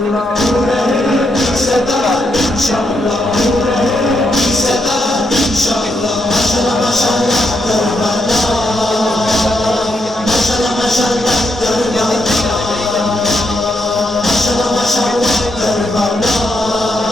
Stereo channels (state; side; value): normal; both; correlation 0.80